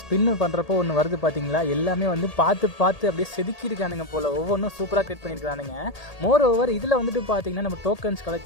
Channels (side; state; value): right; late; 1.8 ms